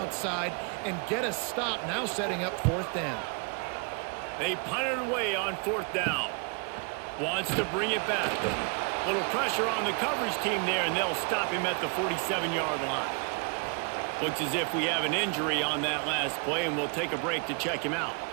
and get a stop, now setting up fourth down. They punted away on fourth down. Wants to bring it back. Little pressure on the coverage team there, and they'll stop him at the 47-yard line. Looks as if we have an injury on that last play, and we'll take a break to check him out.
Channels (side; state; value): left; quieter; 35.5 dB